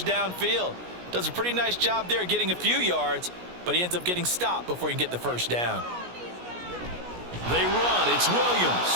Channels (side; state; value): left; late; 17 ms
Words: downfield. Does a pretty nice job there getting a few yards, but he ends up getting stopped before he can get the 1st down. They run. It's